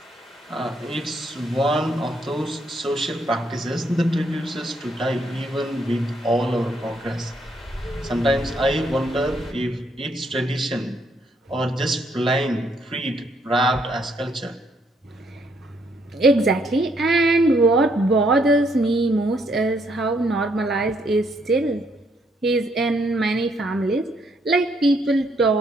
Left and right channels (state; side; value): normal; both; correlation 0.72